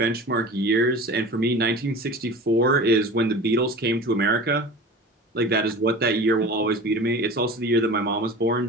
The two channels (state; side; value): normal; both; correlation 0.36